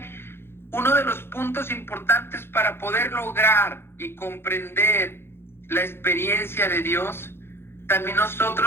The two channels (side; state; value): right; late; 0.11 ms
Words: uno de los puntos importantes para poder lograr y comprender la experiencia de Dios, también